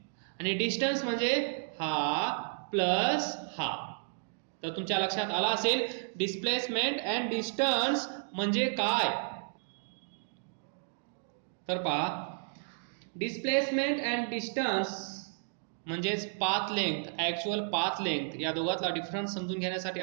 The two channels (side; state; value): left; silent; digital silence